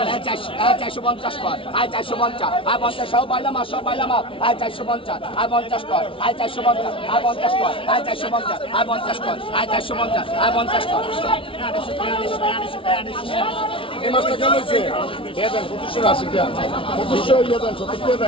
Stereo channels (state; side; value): late; right; 0.25 ms